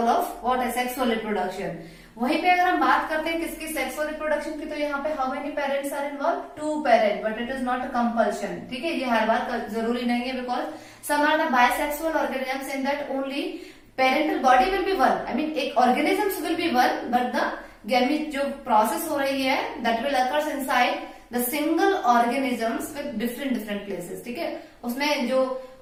of what, asexual reproduction. वहीं पे अगर हम बात करते हैं किसकी, सेक्सुअल रिप्रोडक्शन की, तो यहाँ पे how many parents are involve, 2 parent, but it is not a compulsion. ठीक है, ये हर बार जरूरी नहीं है because some are the bisexual organisms in that only parental body will be one. I mean एक organisms will be one, but the gamete जो प्रोसेस हो रही है that will occurs inside the single organisms with different places. ठीक है, उसमें जो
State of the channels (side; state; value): both; identical; correlation 1.00